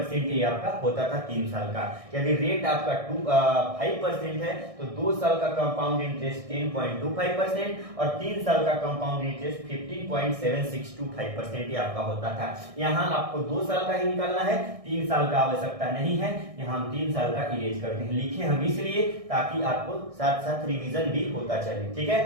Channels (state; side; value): late; left; 1.6 ms